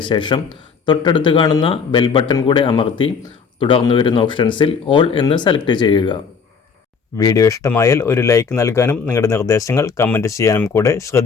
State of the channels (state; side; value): quieter; right; 5.8 dB